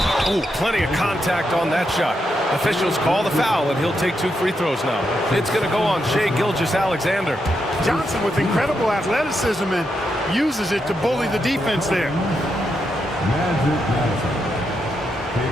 Oh, plenty of contact on that shot. Officials call the foul, and he'll take 2 free throws now. It's going to go on Shai Gilgeous-Alexander. Johnson with incredible athleticism and uses it to bully the defense there. Magic Johnson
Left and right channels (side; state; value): both; normal; correlation 0.83